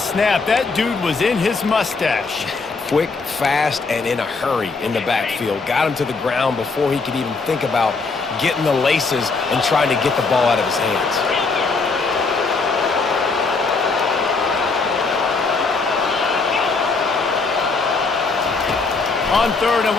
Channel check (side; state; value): right; quieter; 4.2 dB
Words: that dude was in his mustache. Quick, fast, and in a hurry in the backfield. Got him to the ground before he could even think about getting the laces and trying to get the ball out of his hands. On 3rd and